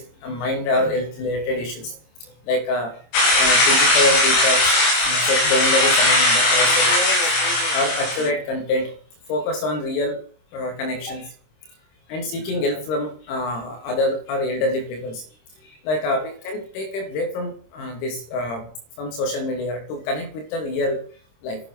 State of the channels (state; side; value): late; right; 26 ms